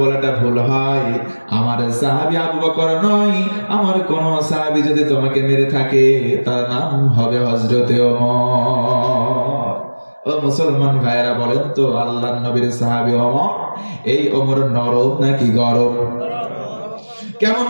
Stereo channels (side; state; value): both; inverted; correlation -1.00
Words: বলাটা ভুল হয়। আমার সাহাবী আবু বকর নয়, আমার কোন সাহাবী যদি তোমাকে মেরে থাকে, তার নাম হবে হযরতে ওমর। ও মুসলমান ভাইরা, বলেন তো, আল্লাহর নবীর সাহাবী ওমর, এই ওমর নরম নাকি গরম? কেমন